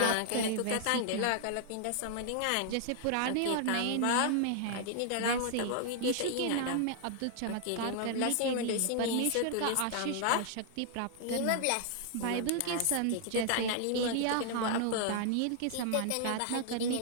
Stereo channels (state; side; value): different; both; correlation 0.00